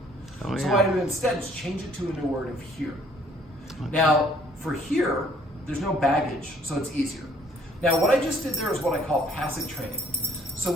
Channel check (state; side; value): normal; both; correlation 0.60